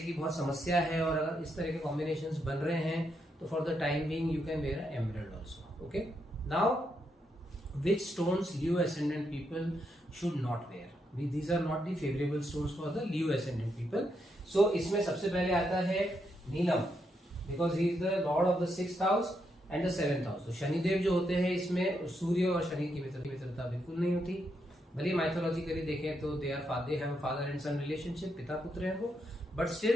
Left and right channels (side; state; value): both; normal; correlation 0.80